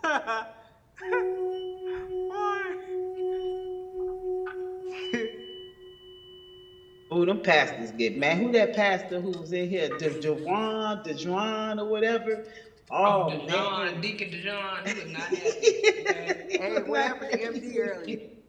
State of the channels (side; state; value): both; identical; correlation 1.00